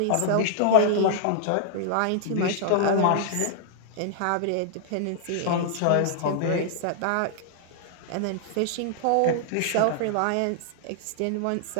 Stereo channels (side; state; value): both; different; correlation -0.01